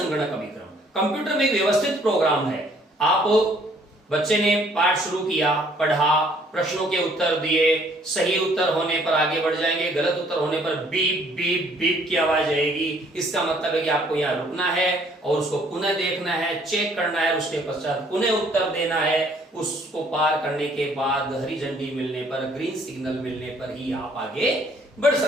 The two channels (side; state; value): both; normal; correlation 0.62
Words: का विक्रम। कंप्यूटर में एक व्यवस्थित प्रोग्राम है। आप बच्चे ने पाठ शुरू किया, पढ़ा, प्रश्नों के उत्तर दिए, सही उत्तर होने पर आगे बढ़ जाएंगे, गलत उत्तर होने पर बीप बीप बीप की आवाज आएगी। इसका मतलब है कि आपको यहाँ रुकना है और उसको पुनः देखना है, चेक करना है, उसके पश्चात पुनः उत्तर देना है। उसको पार करने के बाद हरी झंडी मिलने पर, ग्रीन सिग्नल मिलने पर ही आप आगे बढ़